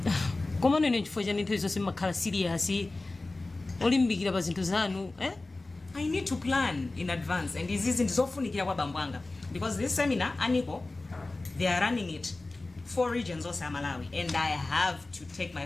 Komano ine chifukwa chani nthawi zonse makhala serious olimbikira pa zinthu zanu I need to plan in advance, and this isn't zofunikira kwa bambwanga because this seminar Niiko, they are running it 4 regions of Malawi, and I have to take my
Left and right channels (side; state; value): right; quieter; 3.1 dB